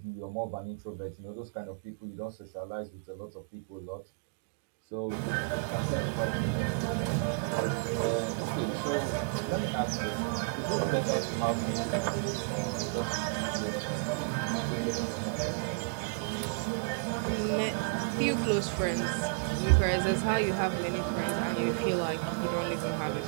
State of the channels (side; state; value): left; quieter; 34.5 dB